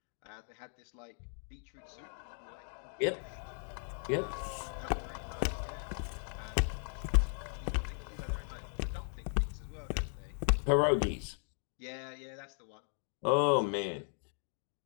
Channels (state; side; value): silent; right; 53 dB below the other